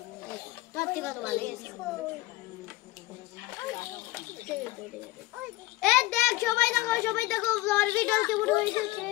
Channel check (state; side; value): quieter; right; 18.7 dB